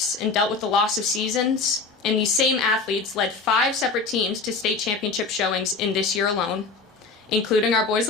and dealt with the loss of seasons, and these same athletes led 5 separate teams to state championship showings in this year alone, including our boys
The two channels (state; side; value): quieter; right; 4.3 dB